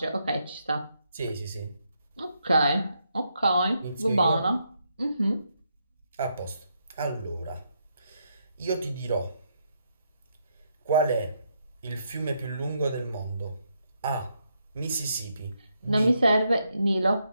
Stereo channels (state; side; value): inverted; both; correlation -0.78